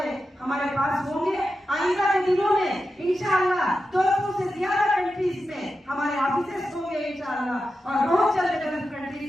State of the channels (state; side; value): normal; both; correlation 0.91